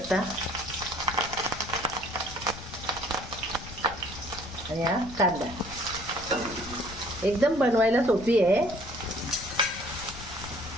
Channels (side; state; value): left; noise; rumble, 13 dB below the sound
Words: आणि हा कांदा। एकदम बनवायला सोपी आहे,